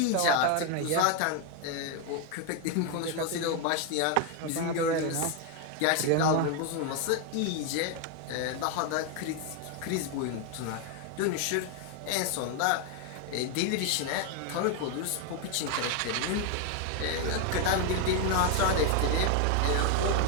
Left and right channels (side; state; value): both; different; correlation 0.01